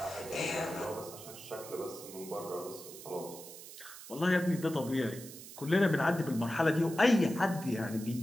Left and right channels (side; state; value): right; noise; hiss, 14 dB below the sound